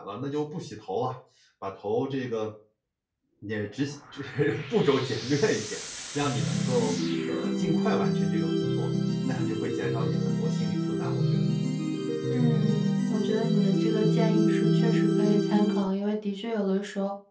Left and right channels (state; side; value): identical; both; correlation 1.00